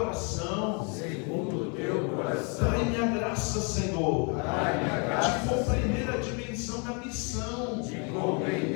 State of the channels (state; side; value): quieter; right; 35.9 dB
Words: segundo o teu coração. dai-me a graça, Senhor, Dai-me a graça, de compreender a dimensão da missão de